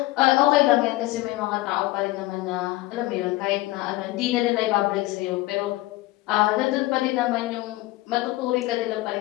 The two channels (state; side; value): quieter; right; 18.6 dB